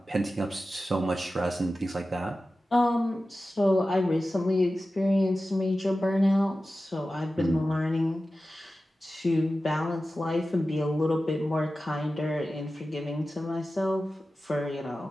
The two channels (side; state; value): both; normal; correlation 0.94